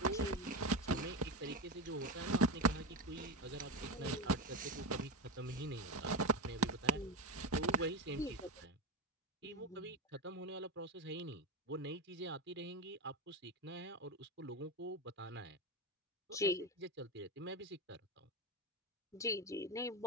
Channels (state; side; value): normal; both; correlation 0.16